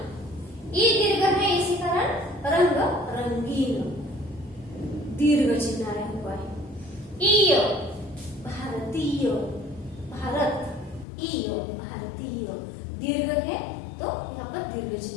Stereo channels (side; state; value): right; drops out; at 11.1 s